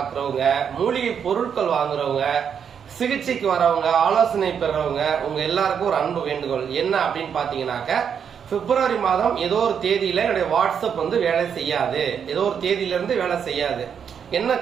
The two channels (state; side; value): quieter; left; 7.5 dB